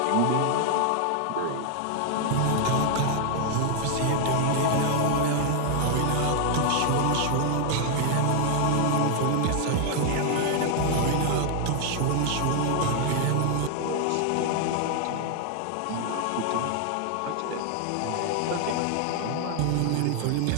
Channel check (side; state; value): both; different; correlation 0.00